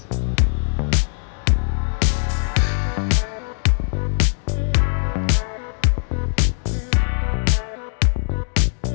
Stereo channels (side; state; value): right; silent; digital silence